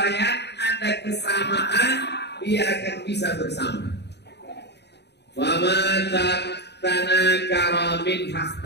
ada kesamaan, dia akan bisa bersama. Fama tanakara min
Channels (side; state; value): right; late; 0.49 ms